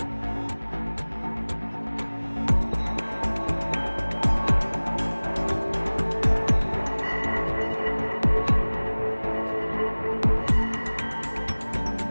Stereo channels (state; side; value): inverted; both; correlation -1.00